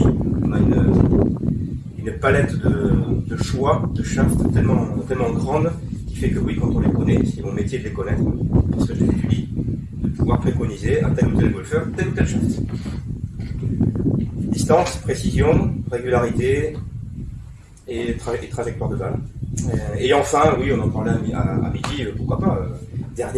on a une palette de choix de shafts tellement grande qui fait que oui, quand on les connaît, c'est mon métier de les connaître, parce que je les étudie, de pouvoir préconiser à tel ou tel golfeur, tel ou tel shaft. Distance, précision, régularité et trajectoire de balle. Et enfin, oui, on en parlait à midi, pourquoi pas,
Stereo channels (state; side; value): identical; both; correlation 1.00